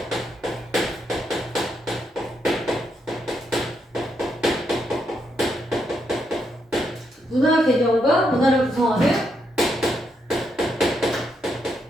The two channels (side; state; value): both; normal; correlation 0.79